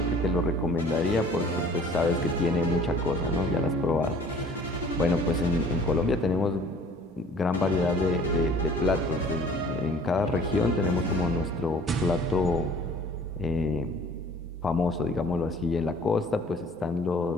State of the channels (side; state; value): both; normal; correlation 0.51